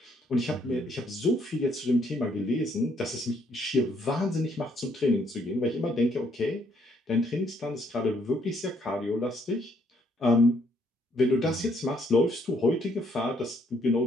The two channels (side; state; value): both; normal; correlation 0.69